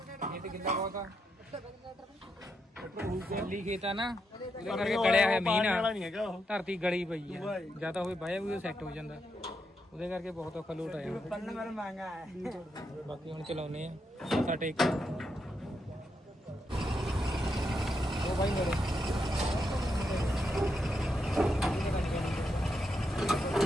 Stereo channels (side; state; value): both; normal; correlation 0.82